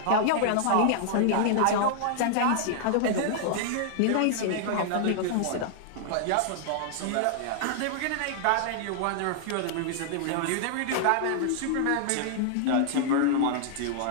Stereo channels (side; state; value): both; different; correlation -0.01